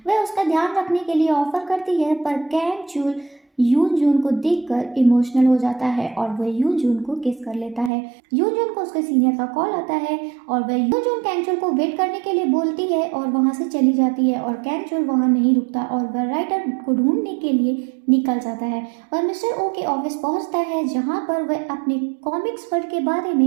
वह उसका ध्यान रखने के लिए ऑफर करती है पर कैन चुल यून जून को देखकर इमोशनल हो जाता है और वह यून जून को किस कर लेता है। यून जून को उसके सीनियर का कॉल आता है और वह यून जून कैन चुल को वेट करने के लिए बोलती है और वहां से चली जाती है और कैन चुल वहां नहीं रुकता और वह राइटर को ढूंढने के लिए निकल जाता है। वह मिस्टर ओ के ऑफिस पहुंचता है जहां पर वह अपने कॉमिक्स वर्ल्ड के बारे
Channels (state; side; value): drops out; left; at 7.9 s